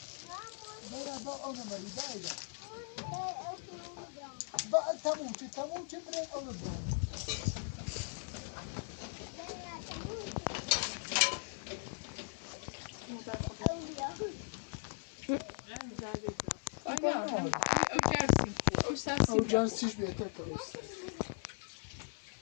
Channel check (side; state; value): right; silent; 52 dB below the other